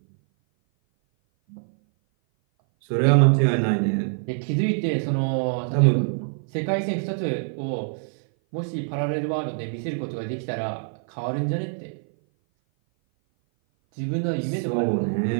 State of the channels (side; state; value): left; silent; 57 dB below the other